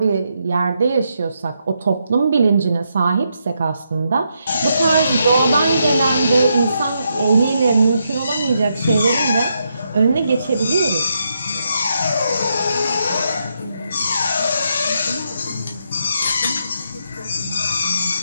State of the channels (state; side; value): inverted; both; correlation -0.80